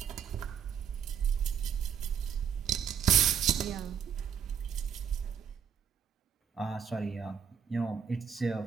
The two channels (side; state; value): left; quieter; 7.8 dB